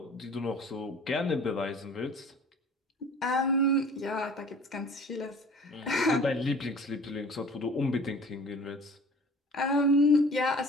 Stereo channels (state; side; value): normal; both; correlation 0.47